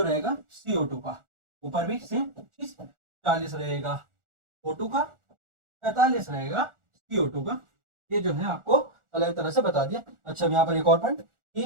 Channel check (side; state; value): left; late; 1.4 ms